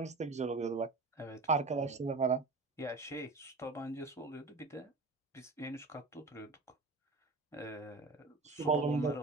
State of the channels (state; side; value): quieter; left; 3.6 dB